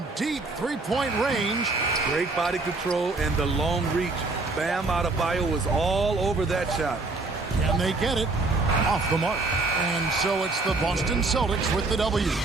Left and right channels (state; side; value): quieter; left; 3.5 dB